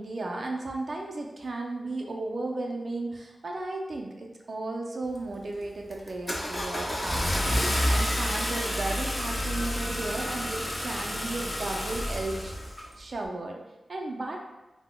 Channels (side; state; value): both; normal; correlation 0.94